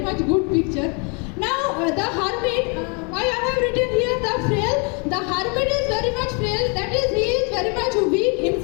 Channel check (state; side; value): quieter; right; 34.6 dB